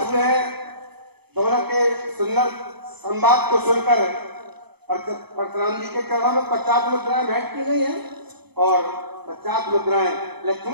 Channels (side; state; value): left; late; 0.98 ms